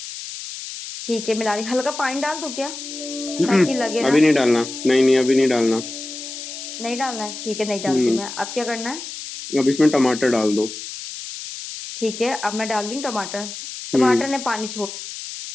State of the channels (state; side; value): noise; left; hiss, 10 dB below the sound